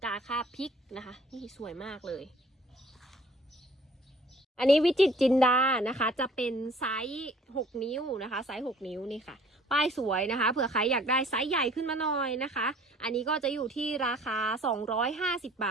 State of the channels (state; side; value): normal; both; correlation 0.53